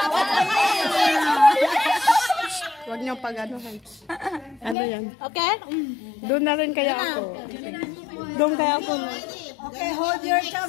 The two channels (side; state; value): right; drops out; at 4.8 s